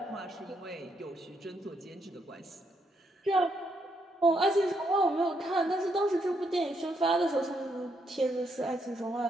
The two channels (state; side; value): normal; both; correlation 0.76